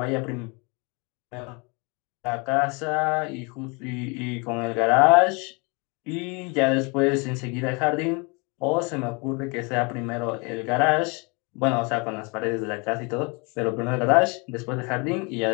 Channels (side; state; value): right; quieter; 30.2 dB